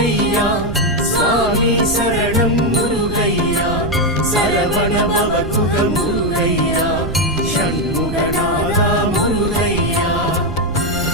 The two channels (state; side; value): noise; right; rumble, 8 dB below the sound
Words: சுவாமி சரணம் முருகையா, சரவண பவகுக முருகையா, ஷண்முகநாதா முருகையா.